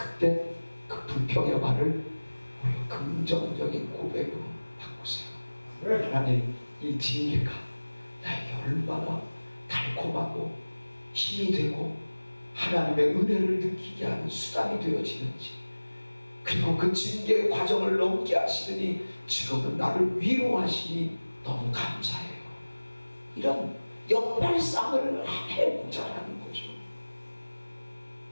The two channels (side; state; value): both; inverted; correlation -1.00